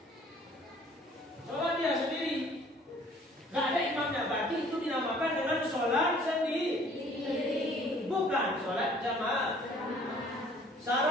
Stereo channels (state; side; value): normal; both; correlation 0.55